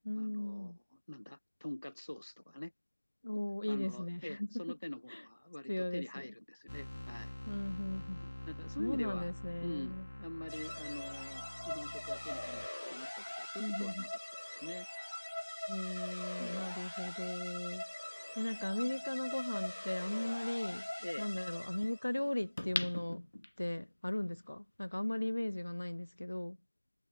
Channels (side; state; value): both; inverted; correlation -1.00